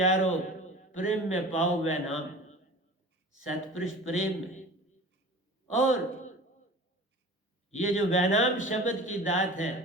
प्रेम में पाओ वह नाम। सतपुरुष प्रेम में, और ये जो वैनाम शब्द की दात है,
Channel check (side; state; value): both; normal; correlation 0.39